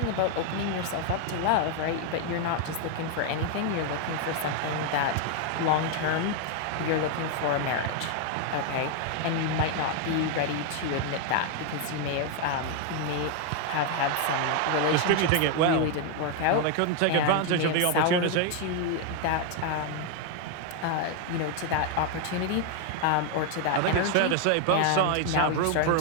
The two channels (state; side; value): different; both; correlation 0.01